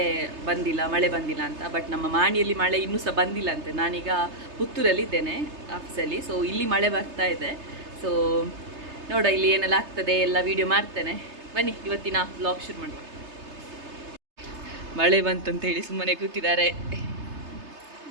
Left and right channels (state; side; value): late; left; 3.3 ms